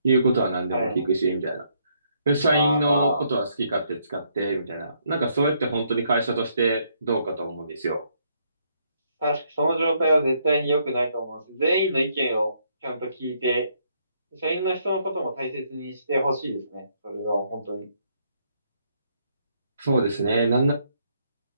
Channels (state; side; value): inverted; both; correlation -0.72